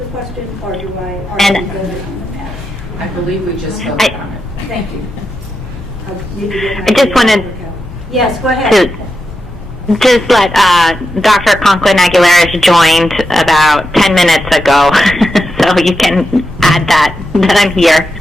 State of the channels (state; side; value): normal; both; correlation 0.88